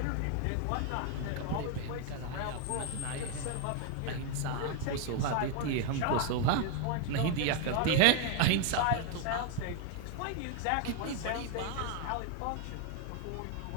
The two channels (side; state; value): both; different; correlation 0.01